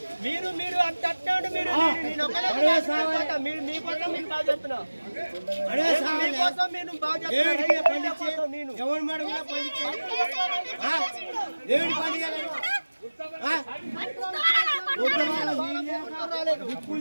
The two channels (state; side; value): inverted; both; correlation -1.00